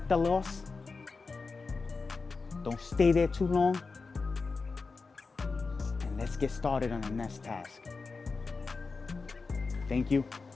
the loss. Don't stay there too long. And let's get started on the next task. Thank you.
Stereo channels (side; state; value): right; quieter; 4.3 dB